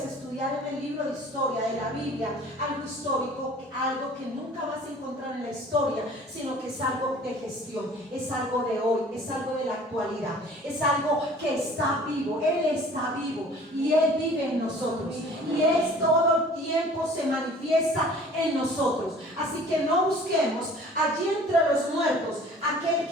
estudiar en el libro de historia de la Biblia algo histórico, algo que nunca vas a encontrar en la historia, sino que es algo de gestión, es algo de hoy, es algo de la actualidad, es algo que está vivo. Él está vivo y Él vive en nosotros, y Él todo el tiempo se manifiesta en nosotros. Así que no busquemos allí entre los muertos aquel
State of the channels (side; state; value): both; normal; correlation 0.49